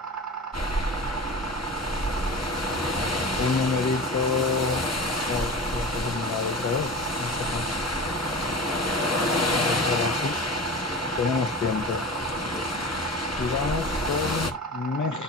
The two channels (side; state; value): both; normal; correlation 0.32